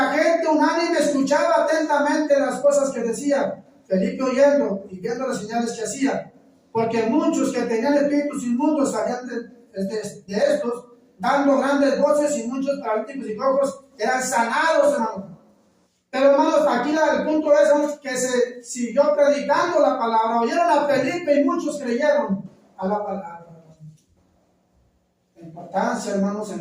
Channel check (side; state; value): both; identical; correlation 1.00